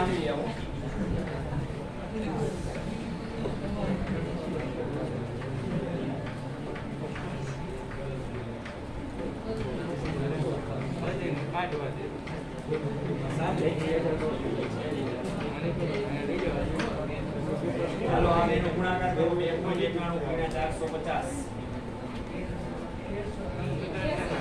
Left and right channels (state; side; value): identical; both; correlation 1.00